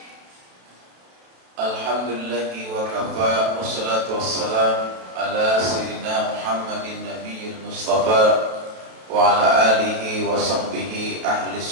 Alhamdulillahi wa kafa, wassalatu wassalam ala sayyidina Muhammadin nabiyil mustafa wa ala alihi wa sahbihi ahli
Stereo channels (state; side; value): late; left; 32 ms